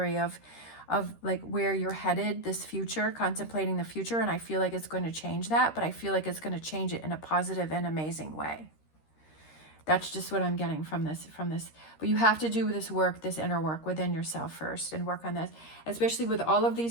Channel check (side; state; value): right; late; 13 ms